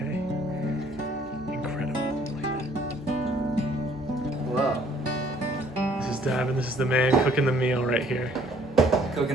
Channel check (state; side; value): normal; both; correlation 0.60